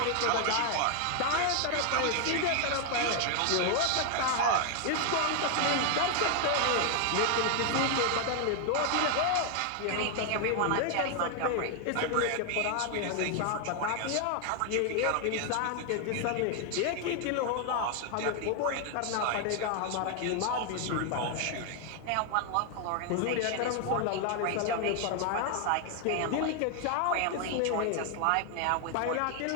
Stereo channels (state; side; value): different; both; correlation 0.00